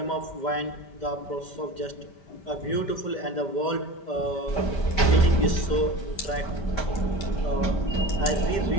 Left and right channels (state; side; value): late; right; 5.1 ms